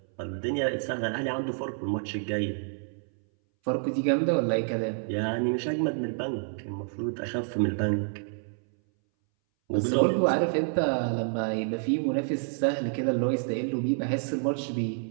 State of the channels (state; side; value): silent; left; 59 dB below the other